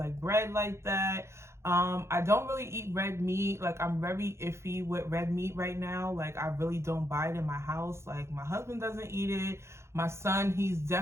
bread like that. I don't really eat red meat. Like, I'm very iffy with red meat right now. Like, I really don't buy it in my house. Like, my husband doesn't eat it. My son, he's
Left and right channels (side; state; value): left; late; 0.13 ms